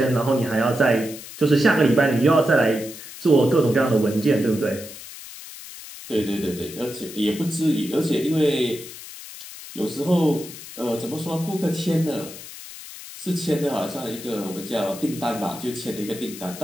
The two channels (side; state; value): left; noise; hiss, 14 dB below the sound